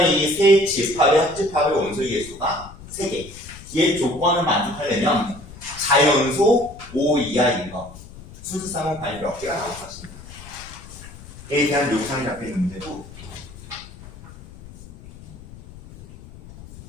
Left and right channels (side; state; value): left; noise; rumble, 17 dB below the sound